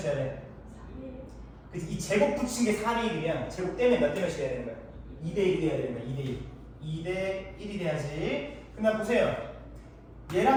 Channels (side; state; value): both; identical; correlation 1.00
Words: 돼야 돼? 그래서 이 제곱 붙인 게 4대 1이면 제곱 떼면 몇 대 몇이 돼야 되는 거야? 2대 1이 돼야 되는 거야. 2대 1. 2대 1이 돼야지. 그냥 보세요.